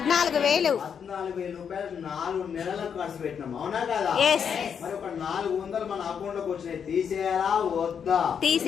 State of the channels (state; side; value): quieter; right; 7.4 dB